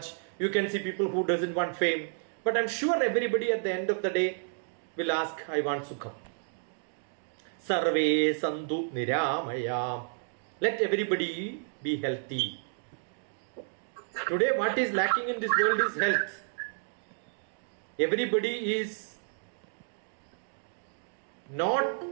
You can see people who doesn't want fame. But I'm sure everybody at the end of the day will ask, I want sukham. Sarve santu niramaya. Let everybody be healthy. Today what is lacking in this world is health. Everybody is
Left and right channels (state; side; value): silent; left; digital silence